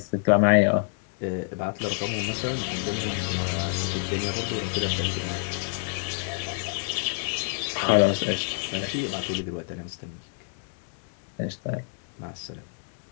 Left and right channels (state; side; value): silent; right; digital silence